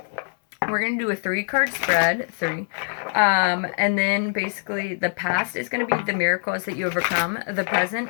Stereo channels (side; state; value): right; silent; 60 dB below the other